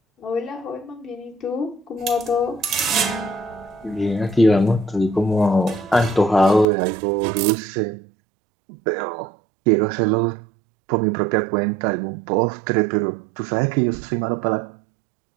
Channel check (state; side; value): drops out; left; at 6.7 s